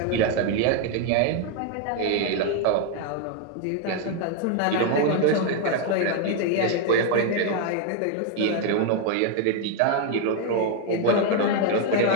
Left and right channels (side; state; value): both; different; correlation 0.01